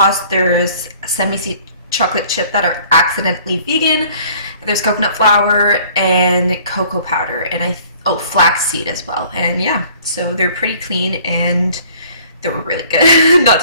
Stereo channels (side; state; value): both; inverted; correlation -0.54